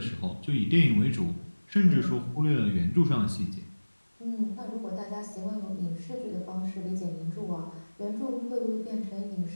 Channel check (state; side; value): inverted; both; correlation -1.00